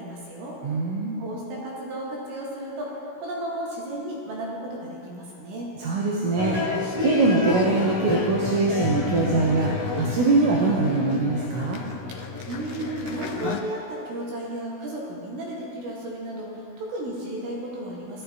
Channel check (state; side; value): late; left; 16 ms